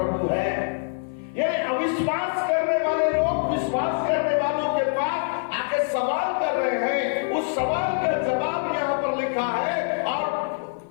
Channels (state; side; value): silent; right; 59 dB below the other